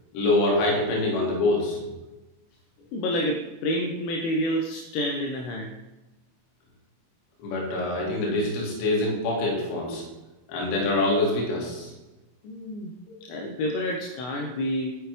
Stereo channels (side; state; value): right; late; 24 ms